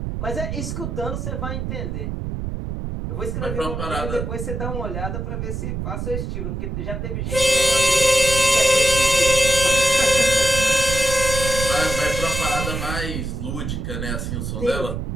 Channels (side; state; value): right; noise; rumble, 4 dB below the sound